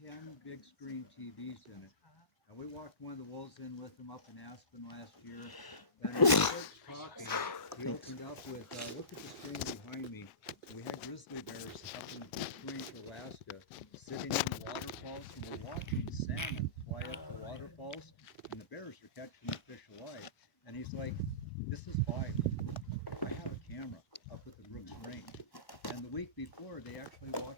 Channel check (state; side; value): late; right; 1.0 ms